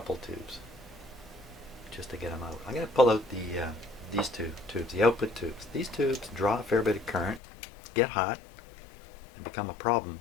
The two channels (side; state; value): right; drops out; at 7.4 s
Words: tubes just to get them out? I'm going to pull out these two tubes, the output tubes. These tubes draw a fair bit of current, get hot, and become a problem